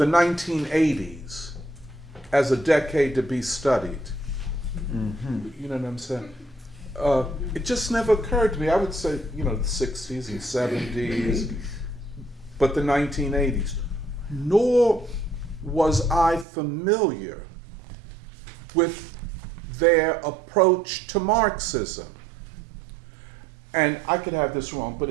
1980s as a decade to be studied. You know what I'm saying? It just never occurred to me. I would say, the 60s and 70s, but the 1980s. Nor was I familiar with their approach to Marxism. And I could have this wrong, but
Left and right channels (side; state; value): left; drops out; at 16.4 s